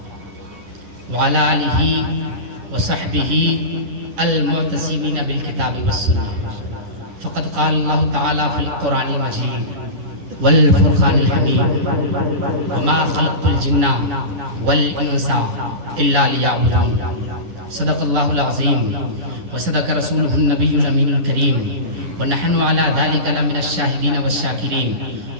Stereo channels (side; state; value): left; late; 11 ms